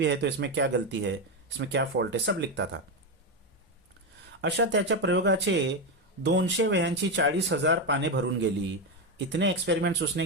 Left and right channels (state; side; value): normal; both; correlation 0.10